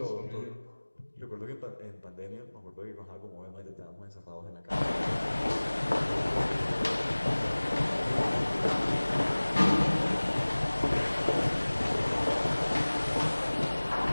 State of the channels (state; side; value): inverted; both; correlation -1.00